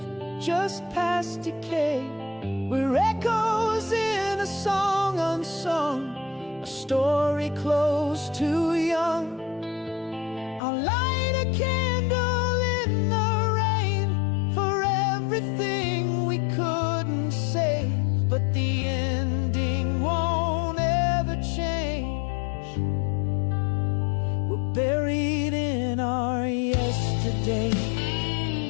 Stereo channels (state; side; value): drops out; right; at 10.6 s